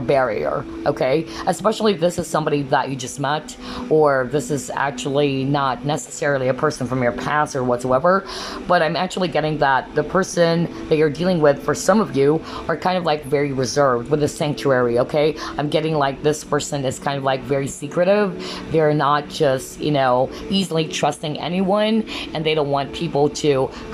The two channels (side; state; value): both; identical; correlation 1.00